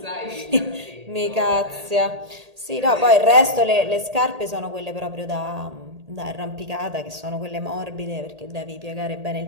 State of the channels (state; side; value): late; left; 1.8 ms